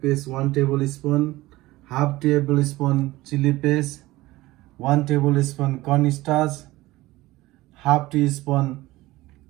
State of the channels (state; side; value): quieter; left; 18.6 dB